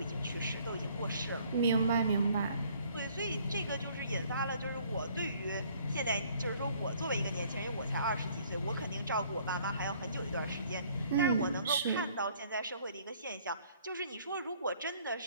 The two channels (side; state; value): both; inverted; correlation -0.60